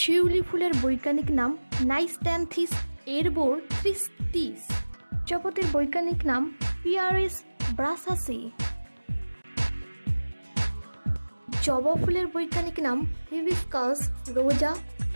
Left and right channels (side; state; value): both; inverted; correlation -1.00